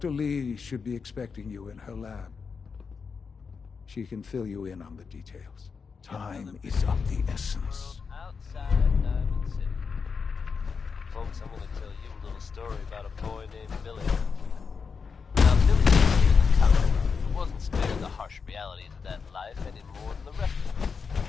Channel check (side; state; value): right; quieter; 5.5 dB